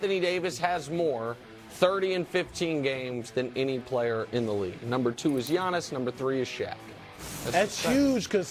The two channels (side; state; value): both; identical; correlation 1.00